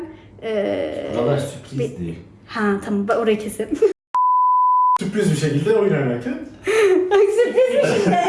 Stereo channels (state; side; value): identical; both; correlation 1.00